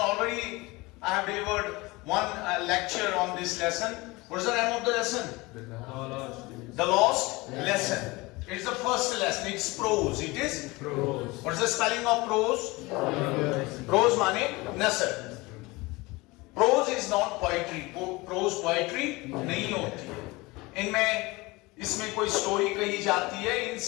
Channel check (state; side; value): quieter; right; 22.8 dB